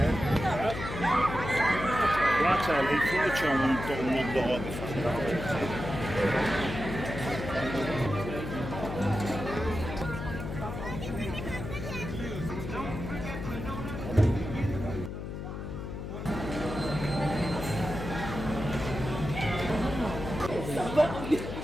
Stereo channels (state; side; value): noise; left; hum, 7 dB below the sound